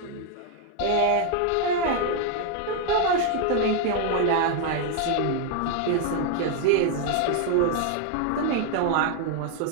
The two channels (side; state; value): both; different; correlation 0.00